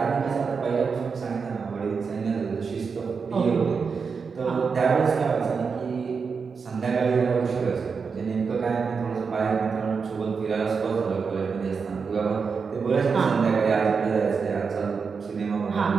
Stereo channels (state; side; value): quieter; left; 5.4 dB